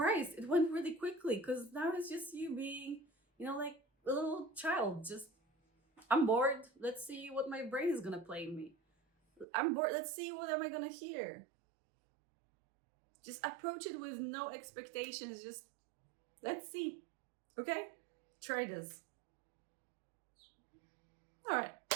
It went really quickly because now it's just you being, like a little child. Just, I'm bored. Let's see what my brain is gonna play me. I'm bored. Let's see what am I gonna hear. Just approach it with no expectations. Just let's see. Okay? Try this. All right.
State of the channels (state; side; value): drops out; left; at 9.5 s